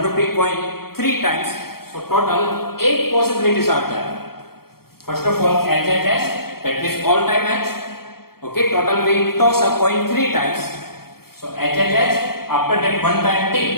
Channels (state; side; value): late; right; 0.94 ms